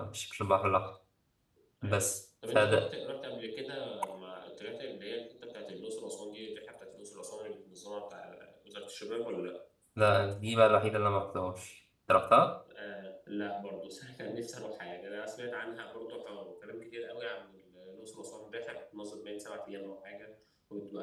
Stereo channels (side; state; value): both; identical; correlation 1.00